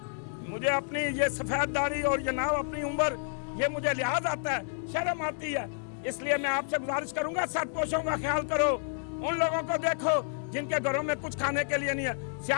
مجھے اپنی یہ سفید داڑھی اور یہ ناو اپنی عمر، یہ مجھے لحاظ آتا ہے، شرم آتی ہے۔ اس لیے میں آپ سے گزارش کروں گا ساتھ پوشوں کا خیال کرو، ان لوگوں کو دیکھو جن کے گھروں میں کچھ کھانے کے لیے نہیں ہے۔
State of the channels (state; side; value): silent; right; digital silence